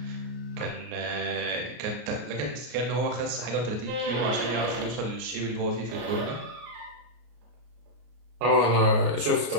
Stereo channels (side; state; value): left; late; 33 ms